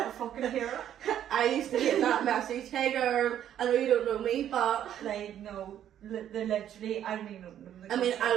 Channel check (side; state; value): left; quieter; 10.6 dB